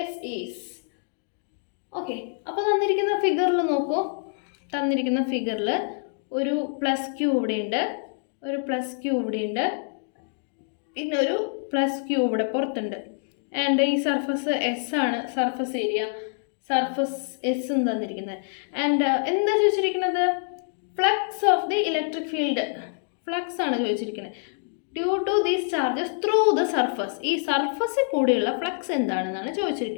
S is. Okay, അപ്പോൾ തന്നിരിക്കുന്ന ഫിഗറിൽ നോക്കൂ. തന്നിരിക്കുന്ന ഫിഗറിൽ ഒരു പ്ലസ് ക്യൂ ഇവിടെയുണ്ട്, ഒരു പ്ലസ് ക്യൂ ഇവിടെയുണ്ട്, പിന്നെ ഒരു പ്ലസ് ക്യൂ ഇവിടെ പുറത്തുണ്ട്. ആൻഡ് ഈ സർഫസ് എസ് ആണ് സർഫസ് ഏരിയ. സർഫസ് എസ് എന്ന് തന്നിരിക്കുന്നത്. ആൻഡ് എന്താ ചോദിച്ചിരിക്കുന്നത്? Flux of the electric field. Flux ആണ് ചോദിച്ചിരിക്കുന്നത്. Due to these charges through the surface. ഈ സർഫസിൽ കൂടിയുള്ള ഫ്ലക്സ് എന്താണെന്നാണ്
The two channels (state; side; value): silent; right; 61 dB below the other